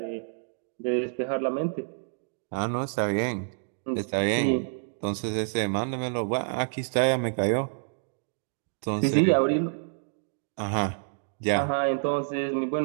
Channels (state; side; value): silent; left; digital silence